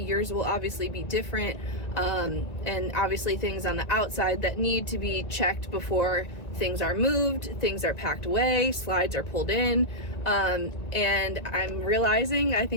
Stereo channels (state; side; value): late; right; 1.9 ms